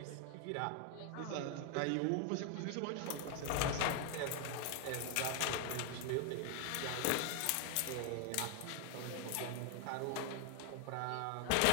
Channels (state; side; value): different; both; correlation 0.00